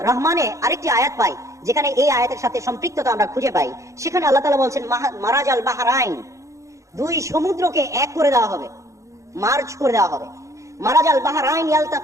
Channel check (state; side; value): late; left; 0.15 ms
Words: রহমানে আরেকটি আয়াত পাই যেখানে এই আয়াতের সাথে সম্পৃক্ততা আমরা খুঁজে পাই। সেখানে আল্লাহ তাআলা বলছেন মারাজাল বাহরাইন, দুই সমুদ্রকে এক করে দেওয়া হবে, মার্জ করে দেওয়া হবে। মারাজাল বাহরাইন